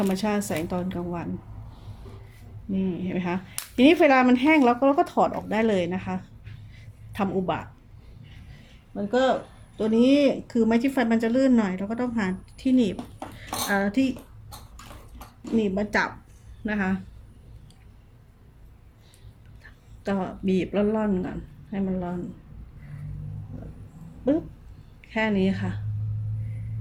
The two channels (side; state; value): both; identical; correlation 1.00